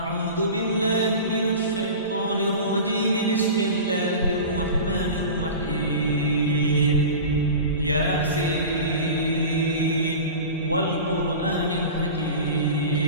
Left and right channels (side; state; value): both; inverted; correlation -0.33